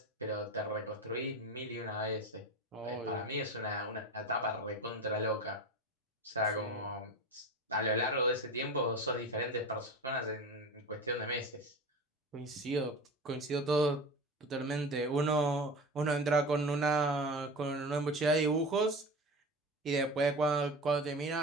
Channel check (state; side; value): normal; both; correlation 0.30